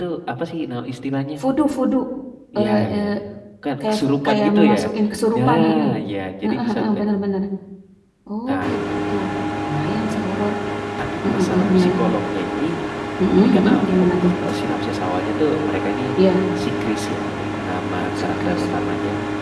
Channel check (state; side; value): identical; both; correlation 1.00